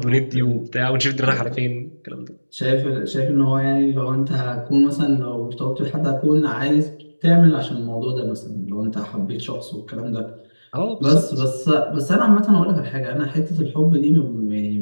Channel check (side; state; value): both; inverted; correlation -1.00